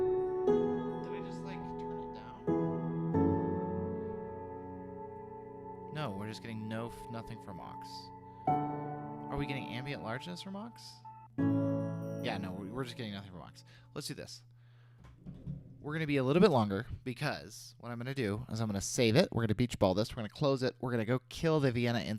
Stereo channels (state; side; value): identical; both; correlation 1.00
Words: Getting nothing from aux. Are we getting ambient largeness from aux? Yeah, no, we're just getting nothing from aux. Let's do this. We're going to be a little bit longer because what I'm going to do is I'm going to save it. We're going to beach ball this. We're going to close it. We're going to go kill the Vienna